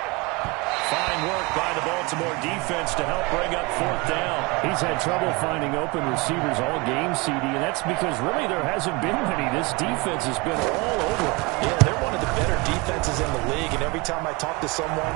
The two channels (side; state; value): left; quieter; 26.3 dB